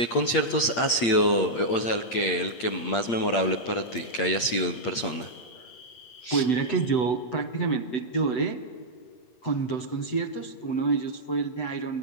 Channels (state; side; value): late; right; 8.6 ms